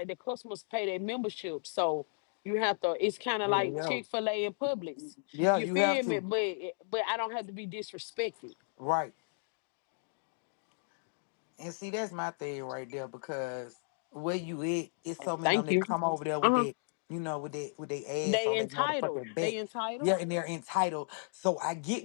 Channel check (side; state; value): right; silent; digital silence